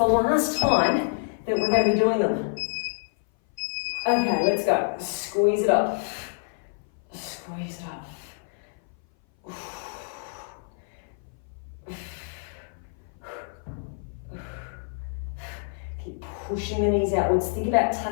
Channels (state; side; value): silent; right; 57 dB below the other